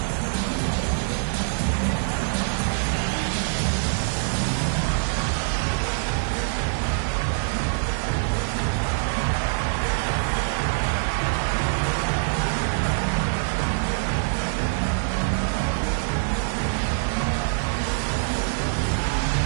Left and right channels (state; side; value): silent; left; digital silence